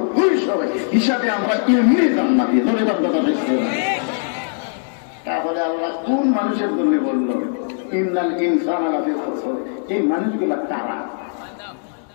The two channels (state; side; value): silent; right; 59 dB below the other